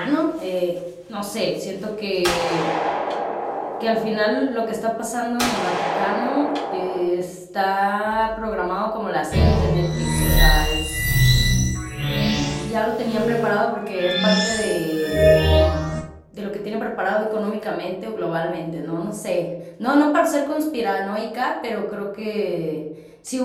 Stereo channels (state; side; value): identical; both; correlation 1.00